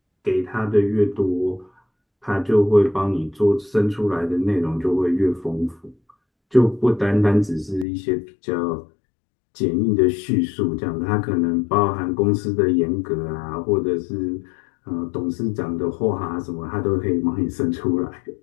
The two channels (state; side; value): drops out; right; at 7.9 s